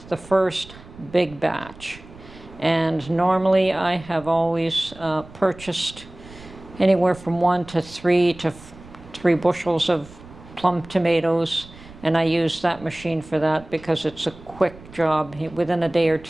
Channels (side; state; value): right; noise; rumble, 20 dB below the sound